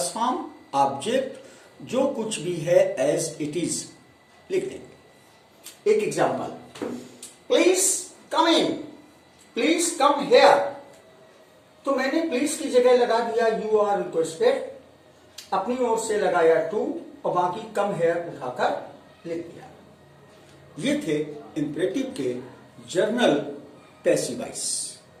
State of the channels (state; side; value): identical; both; correlation 1.00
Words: फॉर्म, ऑब्जेक्ट, जो कुछ भी है एज इट इज लिख देंगे। एक example, please come in, please come here, तो मैंने प्लीज की जगह लगा दिया यू आर रिक्वेस्टेड, अपनी ओर से लगाया टू और बाकी कम हेयर उठाकर लिख दिया। ये थे इंपरेटिव के जर्नल पैसिव वॉइस।